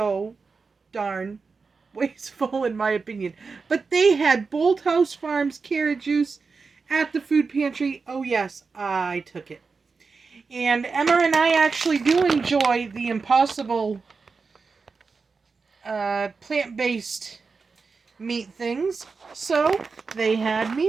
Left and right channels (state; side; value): quieter; left; 4.7 dB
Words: darn wasteful in my opinion. But they had Bolthouse Farms carrot juice at the food pantry. Oh yes, I took it. And Emma and I actually do enjoy the Impossible plant-based meat things. So they had